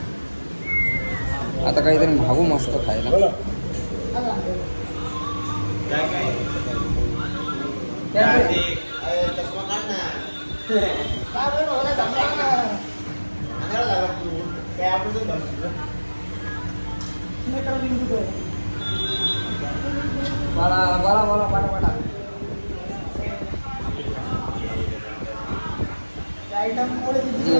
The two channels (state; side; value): inverted; both; correlation -1.00